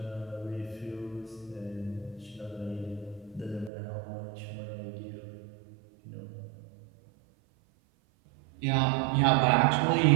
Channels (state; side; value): drops out; left; at 3.7 s